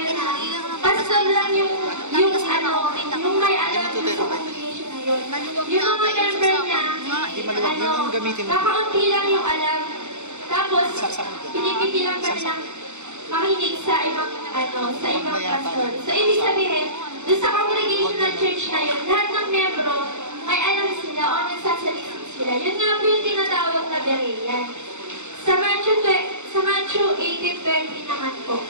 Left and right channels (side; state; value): left; late; 0.83 ms